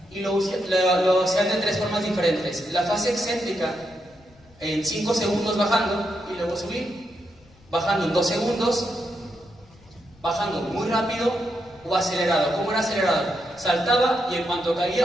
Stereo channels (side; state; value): left; noise; rumble, 28 dB below the sound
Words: y lo hacían de tres formas diferentes. La fase excéntrica en 5 segundos bajando y luego subir, bajando en 2 segundos, bajando muy rápido o acelerado. ¿Cómo era acelerado? Saltaba y en cuanto